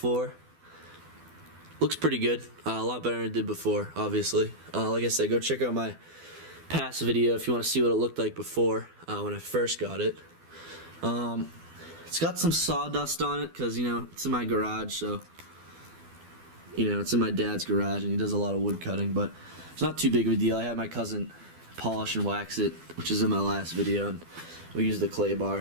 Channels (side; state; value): left; late; 12 ms